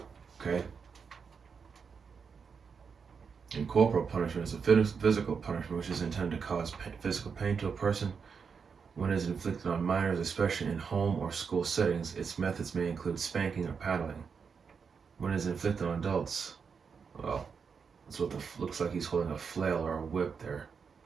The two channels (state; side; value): quieter; left; 5.9 dB